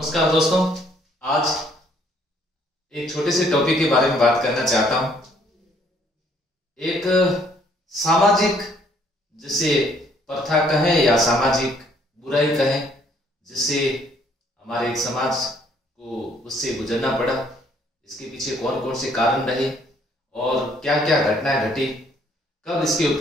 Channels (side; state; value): both; normal; correlation 0.64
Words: नमस्कार दोस्तों। आज एक छोटे से टॉपिक के बारे में बात करना चाहता हूं। एक सामाजिक जिसे प्रथा कहें या सामाजिक बुराई कहें, जिससे हमारे एक समाज को उससे गुजरना पड़ा। इसके पीछे कौन कौन से कारण रहे और क्या क्या घटनाएं घटी, कब इसके